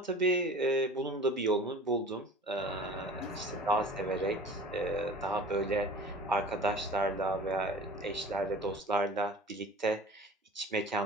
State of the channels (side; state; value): both; normal; correlation 0.41